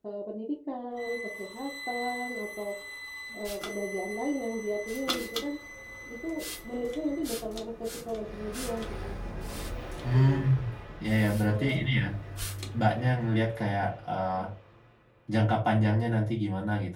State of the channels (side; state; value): both; identical; correlation 1.00